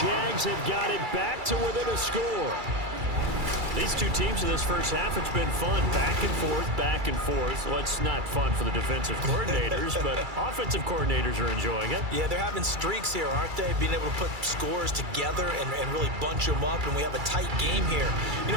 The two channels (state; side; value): late; left; 2.3 ms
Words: have got it back to within a score. These two teams in this first half, it's been fun. Back and forth, back and forth. Well, it's not fun for the defensive coordinators, but offensive coordinators are enjoying it. Yeah, they're having streaks here, aren't they? Being able to put scores together and really bunch them up, and we have a tight game here. You